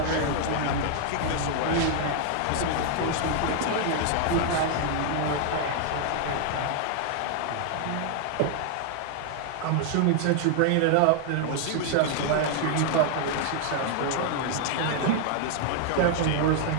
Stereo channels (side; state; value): both; different; correlation 0.00